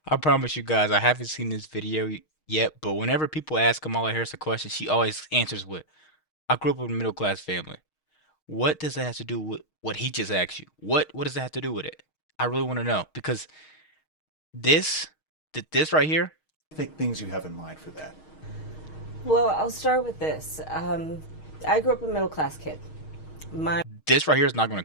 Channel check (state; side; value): late; right; 6.4 ms